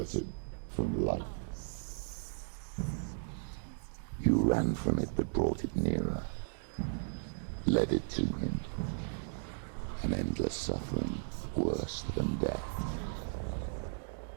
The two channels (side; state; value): left; silent; digital silence